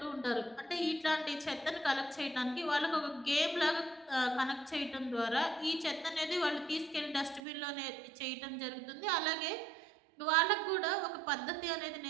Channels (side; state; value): left; drops out; at 7.4 s